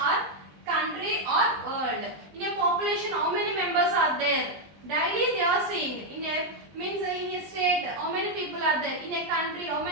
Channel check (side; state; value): left; late; 20 ms